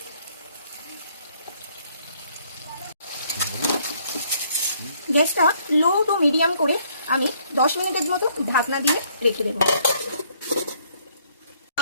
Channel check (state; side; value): inverted; both; correlation -0.66